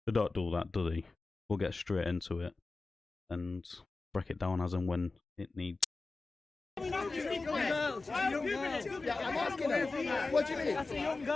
they don't do that, do they? We'll get straight into it and break it down as and when it needs. I'm asking her, what do you mean? That's a young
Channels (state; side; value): quieter; right; 3.6 dB